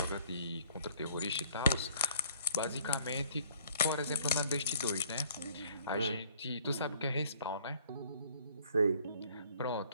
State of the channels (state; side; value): inverted; both; correlation -0.59